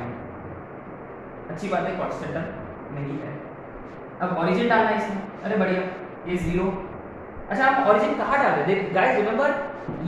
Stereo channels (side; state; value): both; identical; correlation 1.00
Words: अच्छी बात है, कांस्टेंट नहीं है। अब ओरिजिन डालना है इसमें, अरे बढ़िया, ये 0। अच्छा, आप ओरिजिन कहाँ डाल रहे हैं गाइस? रिमेंबर